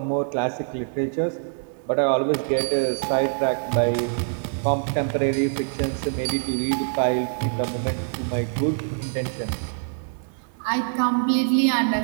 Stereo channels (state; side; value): silent; left; 62 dB below the other